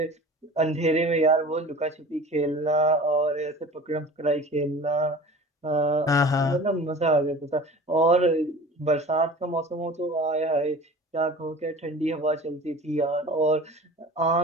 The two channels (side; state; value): both; normal; correlation 0.40